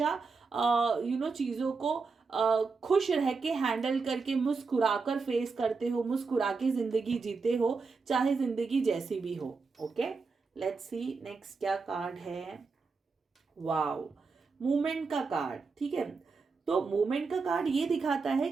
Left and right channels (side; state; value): left; quieter; 4.6 dB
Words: चीज़ों को खुश रह के हैंडल करके मुस्कुराकर फेस करते हो, मुस्कुरा के जिंदगी जीते हो, चाहे जिंदगी जैसी भी हो। ओके, लेट्स सी नेक्स्ट क्या कार्ड है। वाओ, मूवमेंट का कार्ड, ठीक है। तो मूवमेंट का कार्ड ये दिखाता है